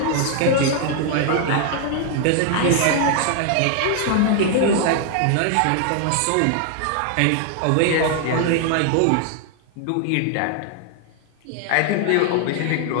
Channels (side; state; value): both; different; correlation 0.00